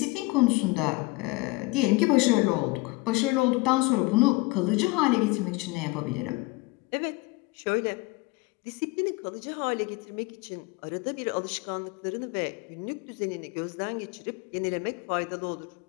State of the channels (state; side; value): quieter; right; 22.7 dB